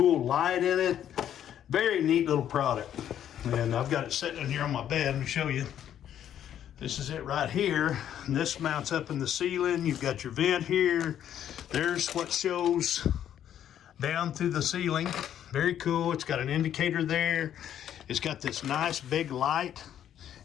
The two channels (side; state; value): right; quieter; 10.3 dB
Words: light in it. Very neat little product. And I've got it sitting in here on my bed. Let me show you. This is it right here. And this mounts up in the ceiling. You've got your vent here. There's what shows down through the ceiling. Very cool. It's got an indicator there. It's got this nice big light.